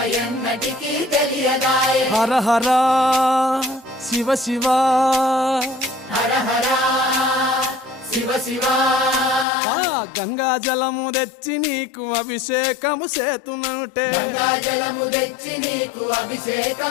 ఎన్నటికీ తెలియదాయే హర హర శివ శివ హర హర శివ శివ గంగా జలము తెచ్చి నీకు అభిషేకము చేతునంటే గంగా జలము తెచ్చి నీకు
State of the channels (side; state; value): right; drops out; at 9.5 s